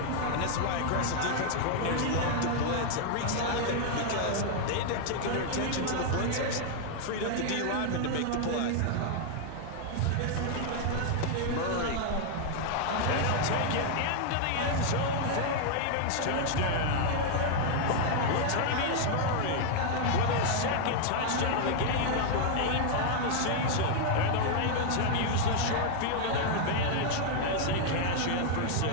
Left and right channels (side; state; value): both; different; correlation 0.00